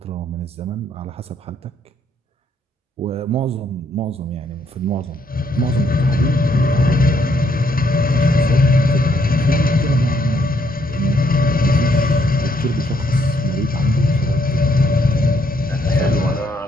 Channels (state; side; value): normal; both; correlation 0.71